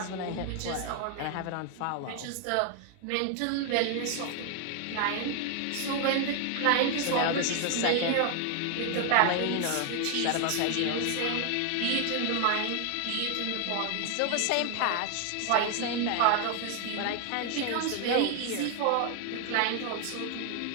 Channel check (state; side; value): different; both; correlation 0.00